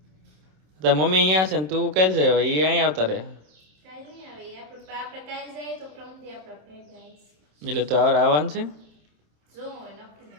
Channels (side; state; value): left; late; 27 ms